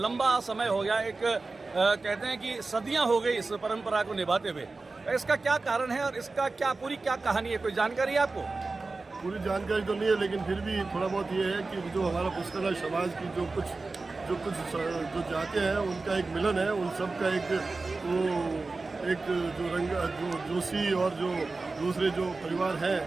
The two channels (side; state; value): left; quieter; 3.7 dB